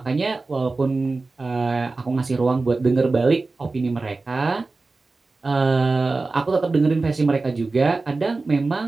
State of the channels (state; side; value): quieter; left; 3.6 dB